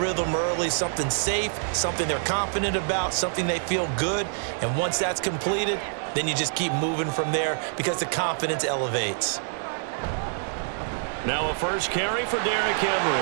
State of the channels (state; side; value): silent; left; digital silence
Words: early, something safe, something they're confident about, something they feel good. And once that's completed, then you just keep moving from there because the confidence elevates. Now a first carry for Derrick